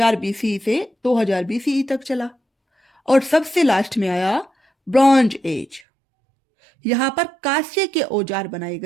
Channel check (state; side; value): drops out; left; at 5.8 s